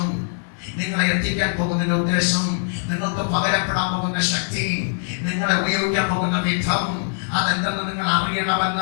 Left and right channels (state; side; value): silent; right; digital silence